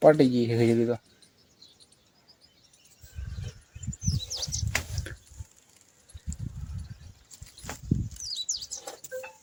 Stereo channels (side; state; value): both; identical; correlation 1.00